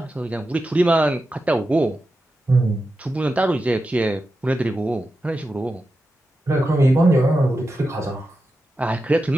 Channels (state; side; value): normal; both; correlation 0.90